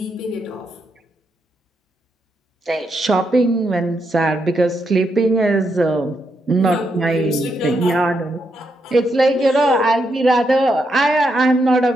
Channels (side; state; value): both; normal; correlation 0.81